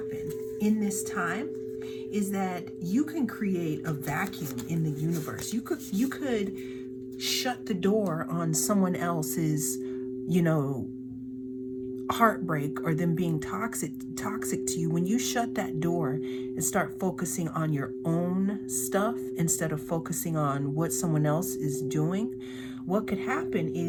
in this time is that you can create a vacuum in the universe. You could shut the door on someone else's, heartbreak or them being toxic to you. When you shut that door and start focusing on your own stuff instead of focusing on what someone else is doing, what could happen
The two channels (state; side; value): identical; both; correlation 1.00